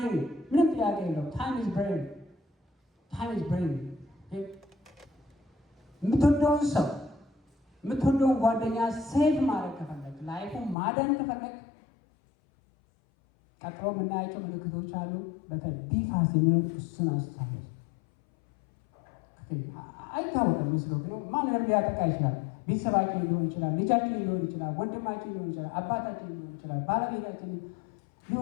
ምንም ጥያቄ የለው። ታይም ኢዝ ብሬን። የምትወደውን ሰው የምትወደውን ጓደኛ ሴቭ ማድረግ ከፈለግ፣ ላይፉን ማዳን ከፈለግ ቀጥሎ የምናያቸው ምልክቶች አሉ። በተለይ ቢፋስ የሚሆን እሱን አስታውስ። አይታወቅም ምስሎ ግን ማንንም ሊያጠቃ ይችላል። ቤተሰባችን ሊሆን ይችላል፣ ልጃችን ሊሆን ይችላል፣ ወንድማችን ሊሆን ይችላል፣ አባታችን ሊሆን ይችላል፣ ባለቤታችን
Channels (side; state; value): right; drops out; at 10.8 s